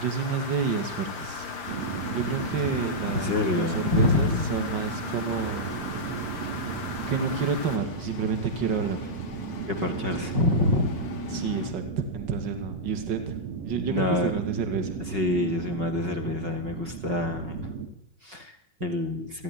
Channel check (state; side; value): late; left; 5.3 ms